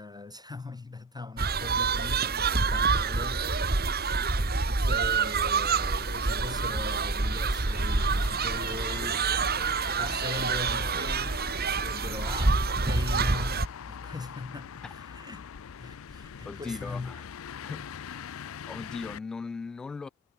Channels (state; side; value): quieter; left; 3.2 dB